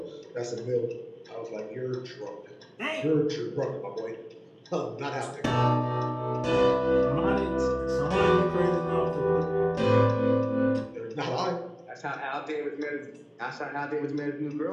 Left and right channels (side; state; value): both; identical; correlation 1.00